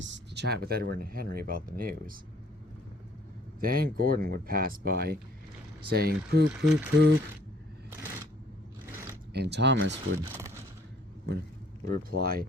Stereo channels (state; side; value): normal; both; correlation 0.59